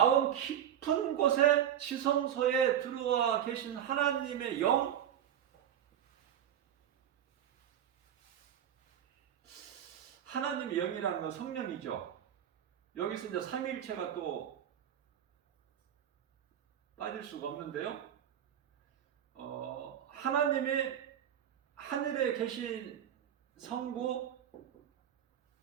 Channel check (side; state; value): left; quieter; 10.0 dB